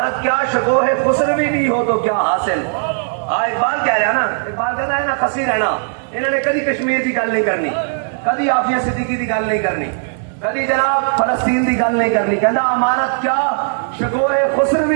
کیا شکو ہے خسروی بھی ہو تو کیا حاصل. اقبال کہہ رہا نا, اقبال کہتا ہے نا خسی رہنا. انہوں نے کدی کشمیر کی گل نہیں کرنی, کدی عافیہ صدیقی کی گل نہیں کرنی, کدی جناب فلسطین کی گل نہیں کرنی. کہنا امانت کیا شکوہ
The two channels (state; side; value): silent; left; digital silence